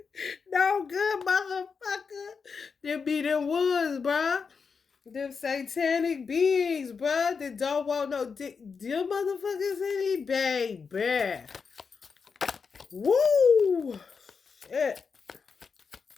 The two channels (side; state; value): right; quieter; 5.5 dB